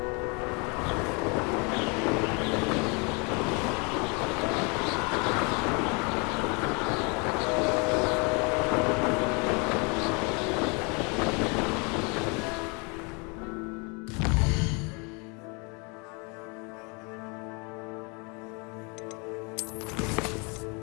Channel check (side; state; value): right; quieter; 31.9 dB